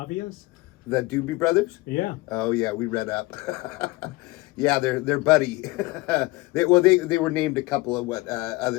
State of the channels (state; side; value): quieter; right; 21.5 dB